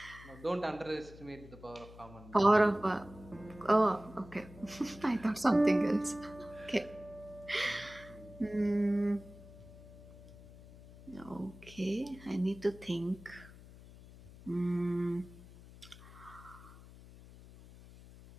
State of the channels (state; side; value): noise; left; hum, 19 dB below the sound